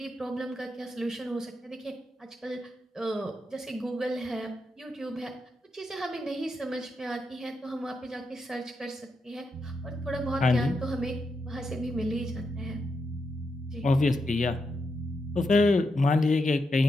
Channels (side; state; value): both; normal; correlation 0.84